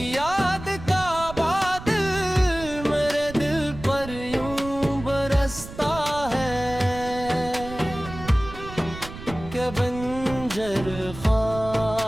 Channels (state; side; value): noise; right; rumble, 13 dB below the sound